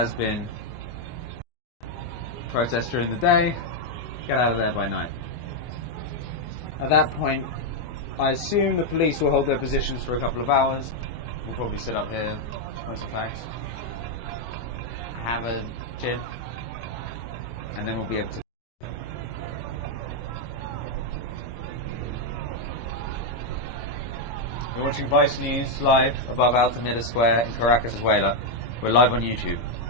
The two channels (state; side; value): late; right; 24 ms